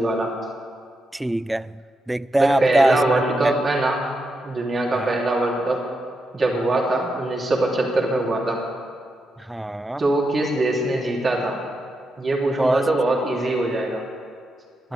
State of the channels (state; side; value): normal; both; correlation 0.85